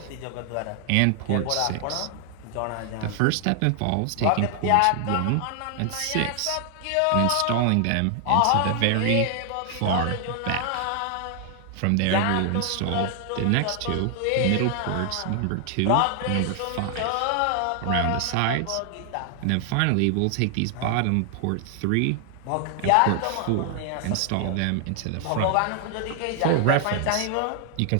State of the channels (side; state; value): both; different; correlation 0.00